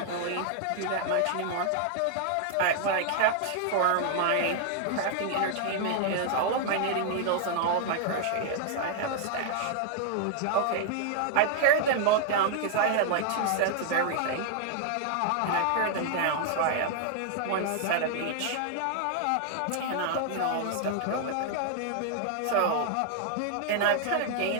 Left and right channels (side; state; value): both; different; correlation 0.00